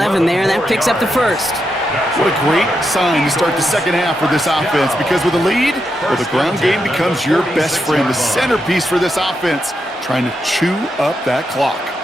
there, and that picks up the first. What a great sign to start the second half for this offense, because with a lead, well, the ground game becomes your best friend, the centerpiece for this offense, trying to chew up that clock.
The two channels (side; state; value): both; normal; correlation 0.84